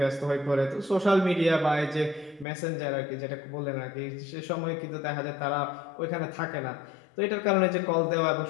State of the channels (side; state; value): right; drops out; at 2.5 s